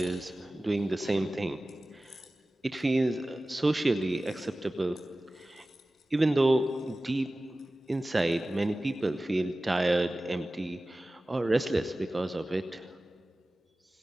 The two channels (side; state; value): both; normal; correlation 0.97